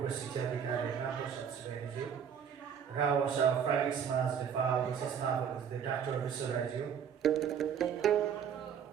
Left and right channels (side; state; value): left; quieter; 7.8 dB